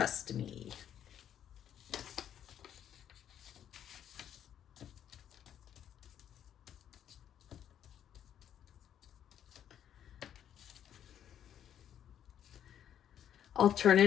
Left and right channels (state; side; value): quieter; right; 9.9 dB